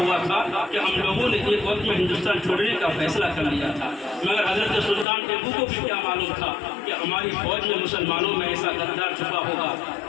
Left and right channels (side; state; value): right; drops out; at 5.1 s